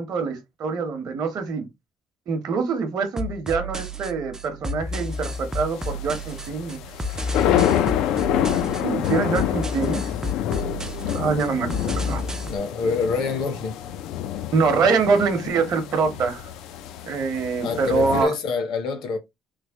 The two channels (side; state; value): both; normal; correlation 0.52